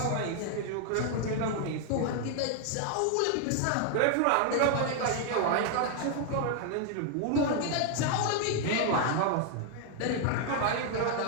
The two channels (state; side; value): different; both; correlation 0.00